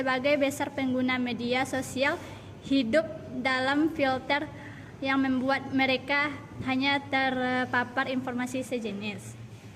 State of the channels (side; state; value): both; identical; correlation 1.00